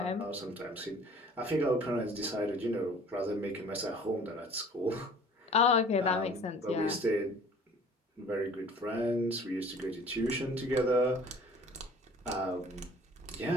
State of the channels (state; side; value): normal; both; correlation 0.50